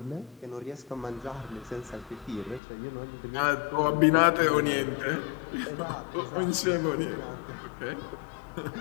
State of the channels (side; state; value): right; drops out; at 2.6 s